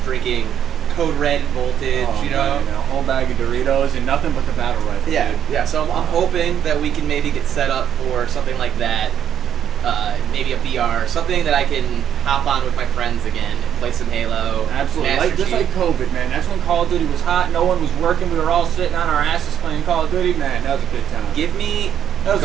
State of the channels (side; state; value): left; quieter; 9.5 dB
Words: drinking Code Red and Voltage, Oh, you know. man, a whole bag of Doritos and nothing but the battle rifle. Yeah, dude. yeah. So I'm hoping that we can maybe get set up for something like that. Maybe a VR, something that I can hop on with my friends again and play some Halo. Absolutely. Master Just Chief. like COVID, man. That's when Call of Duty was hot. No one was working. We were all sitting on our asses playing Call of Duty. Man, that was a good time. Give me That was